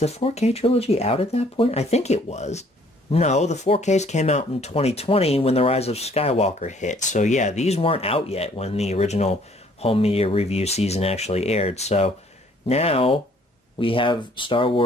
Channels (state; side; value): normal; both; correlation 0.61